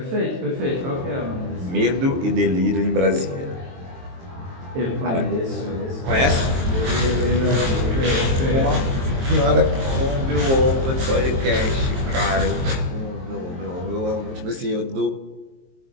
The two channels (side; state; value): left; late; 23 ms